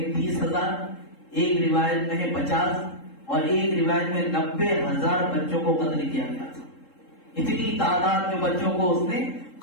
30,000، ایک روایت میں ہے 50 اور ایک روایت میں 90,000 بچوں کو قتل کیا گیا تھا۔ اتنی تعداد میں بچوں کو اس نے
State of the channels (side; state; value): right; late; 3.7 ms